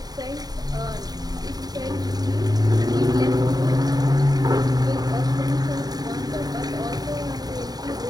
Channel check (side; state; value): left; late; 0.19 ms